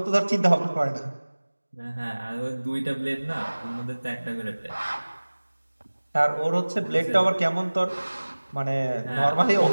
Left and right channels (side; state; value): both; inverted; correlation -1.00